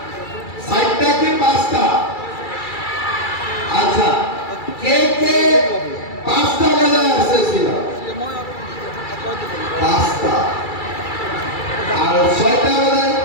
4টা কি 5টা? আচ্ছা, কে 5টা বাজায় আসছিল? 5টা। আর 6টা বাজায়?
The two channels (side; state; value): right; late; 2.3 ms